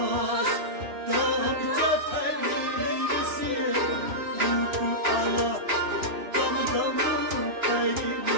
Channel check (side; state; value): left; late; 2.9 ms